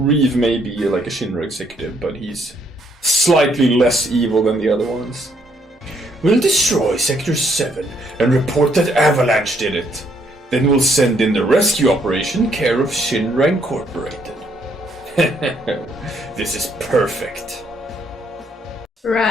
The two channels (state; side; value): normal; both; correlation 0.70